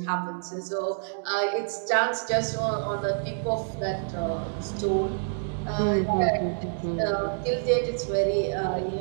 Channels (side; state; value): left; silent; digital silence